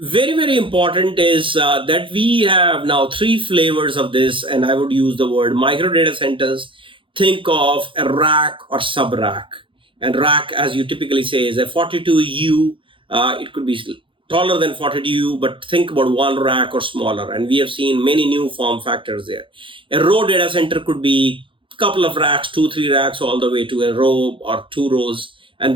very important is that we have now 3 flavors of this, and I would use the word micro data centers. Think of a rack or sub-rack. And rack, as you typically say, is a 42U. It could be taller than 42U, but think about one rack or smaller. And we have seen many new form factors there. A row data center could be a couple of racks, 2, 3 racks, all the way to a row or 2 rows. And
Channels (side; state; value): left; late; 0.25 ms